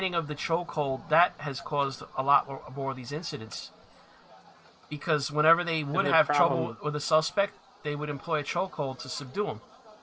of the chokehold that has caused a lot more of these incidents. Because whenever they would have trouble with a suspect, they would employ a chokehold to subdue him.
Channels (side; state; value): both; identical; correlation 1.00